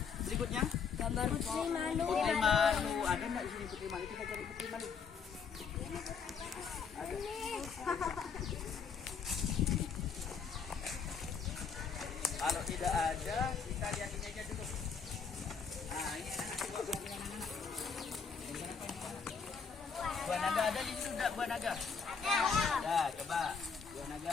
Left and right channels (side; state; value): right; quieter; 6.0 dB